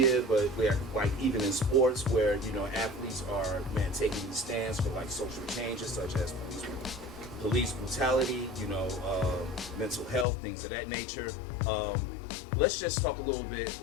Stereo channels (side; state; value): right; drops out; at 10.2 s